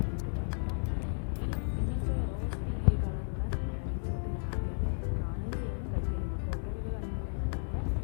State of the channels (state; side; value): silent; right; digital silence